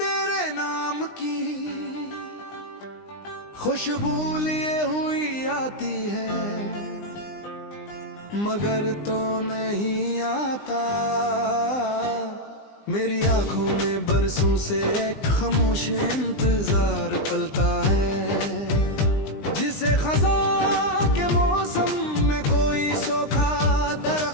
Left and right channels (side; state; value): right; late; 20 ms